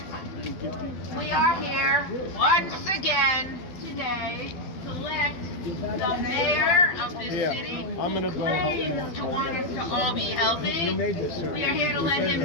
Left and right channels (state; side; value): late; right; 12 ms